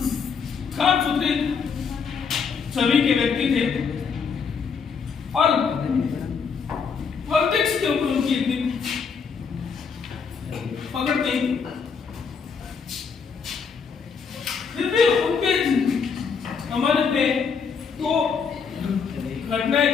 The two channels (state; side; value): quieter; right; 5.9 dB